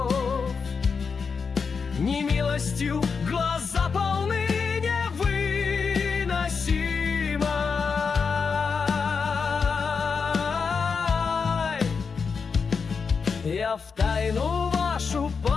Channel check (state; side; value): quieter; right; 5.5 dB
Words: Немилостью глаза полны невыносимой. Я в тайну вашу